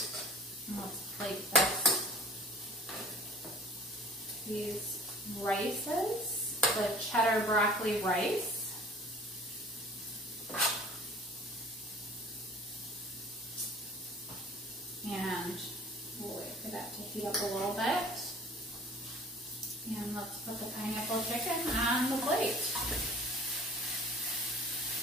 And let's plate these rices, the cheddar broccoli rice. And we'll wait for that to heat up a little bit. And let's put the pineapple chicken on the plate.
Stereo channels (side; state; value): both; normal; correlation 0.47